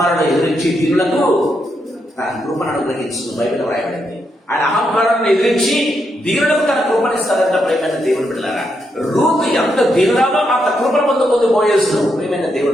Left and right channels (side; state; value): both; normal; correlation 0.81